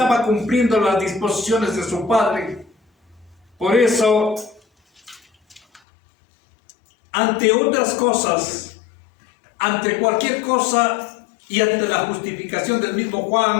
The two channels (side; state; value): right; drops out; at 5.8 s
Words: cumpliendo las disposiciones de su Padre. Por eso, ante otras cosas, ante cualquier cosa y ante la justificación del mismo